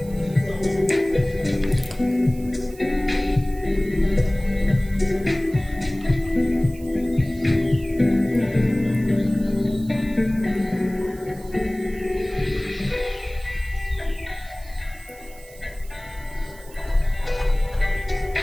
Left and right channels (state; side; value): noise; right; hiss, 22 dB below the sound